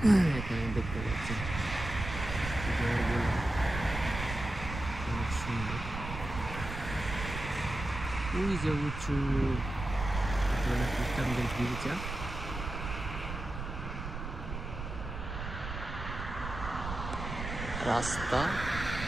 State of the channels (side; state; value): right; noise; rumble, 7 dB below the sound